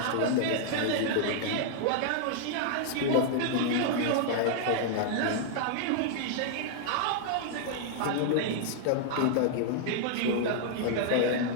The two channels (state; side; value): different; both; correlation -0.01